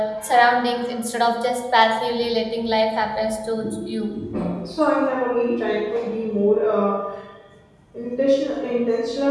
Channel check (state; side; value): identical; both; correlation 1.00